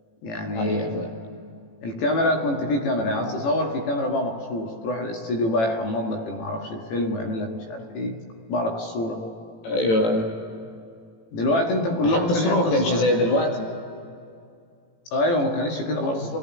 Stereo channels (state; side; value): late; right; 18 ms